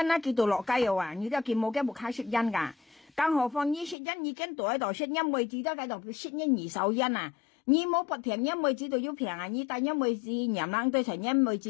啦，佢到落街又話，你都佢冇嘅木卡識因㗎，更何況你識因已經到喺度識因妹子都喺度識因二手因啊。你冇不平因妹子都要平啊！你但因妹子娘冷對成因妹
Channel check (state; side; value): drops out; right; at 4.0 s